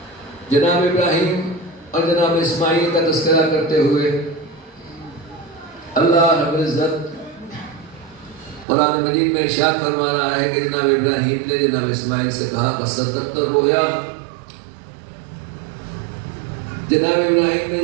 جناب ابراہیم اور جناب اسماعیل کا تذکرہ کرتے ہوئے اللہ رب العزت قرآن مجید میں ارشاد فرما رہا ہے کہ جناب ابراہیم نے جناب اسماعیل سے کہا فَصَدَّقْتَ الرُّؤْيَا، جناب ابراہیم نے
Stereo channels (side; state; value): left; drops out; at 8.7 s